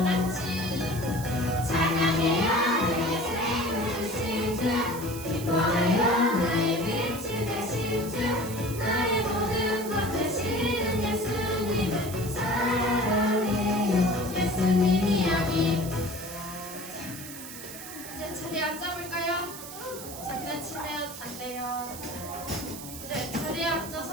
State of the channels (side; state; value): right; noise; hiss, 12 dB below the sound